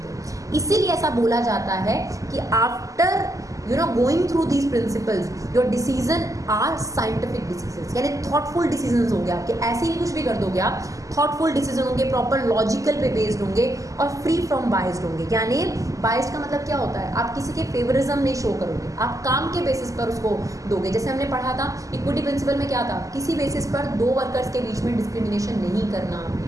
हैं। इसीलिए ऐसा बोला जाता है कि after going through these principles your decision are scientific decision, यानी थॉटफुल डिसीजन होंगे आपके, ऐसे ही कुछ भी कर दोगे आप, थॉटफुल डिसीजन होंगे, प्रॉपर लॉजिकल पे बेस्ड होंगे और फ्री फ्रॉम बायस्ड होंगे। यानी बायस्ड का मतलब क्या होता है, आप किसी के फेवरिज्म नहीं शो करोगे, आप काम के बेसिस पर उसको दोगे। जैसे हमने पढ़ा था इक्विटी प्रिंसिपल में क्या था, किसी बेसिस पर दो वर्कर्स के बीच में डिस्क्रिमिनेशन नहीं करना,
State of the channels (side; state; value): left; late; 0.16 ms